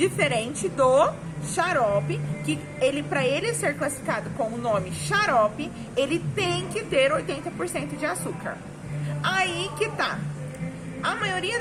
do xarope, que ele, para ele ser classificado com o nome xarope, ele tem que ter 80% de açúcar. Aí que tá. A maioria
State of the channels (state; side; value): identical; both; correlation 1.00